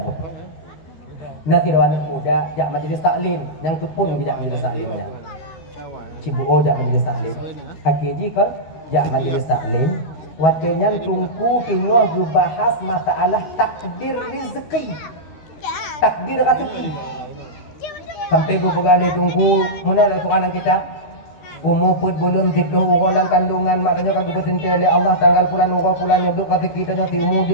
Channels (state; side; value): late; right; 12 ms